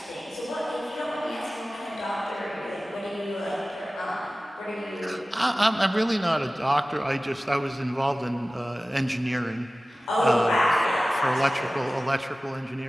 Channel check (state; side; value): normal; both; correlation 0.97